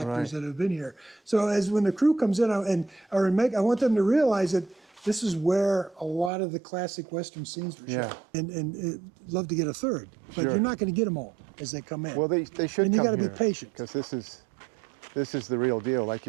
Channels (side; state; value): left; drops out; at 6.3 s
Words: that have been here. So as when the crew comes in I want them to realize that this is where a lot of the classic Western scenes were shot. And love to get a third, but you're not going to get them all as they come in. Well, they should. And you got to be patient, because this is the real deal. Like